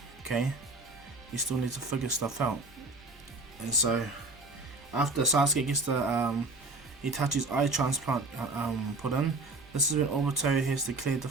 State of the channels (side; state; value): left; quieter; 3.1 dB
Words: Okay, he still needs to figure stuff out. And so after Sasuke gets the Itachi's eye transplant put in, this is when Obito has declared the